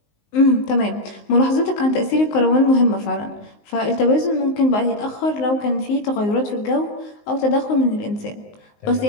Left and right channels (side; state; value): right; late; 19 ms